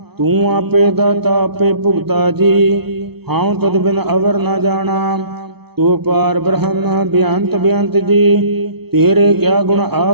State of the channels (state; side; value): late; left; 0.97 ms